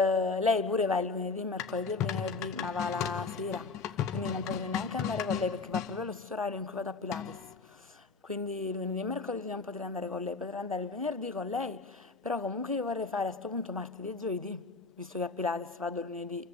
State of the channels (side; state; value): right; quieter; 4.1 dB